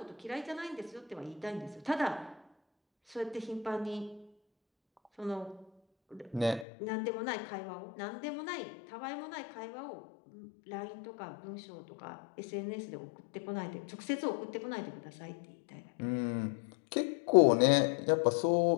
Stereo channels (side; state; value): right; drops out; at 6.7 s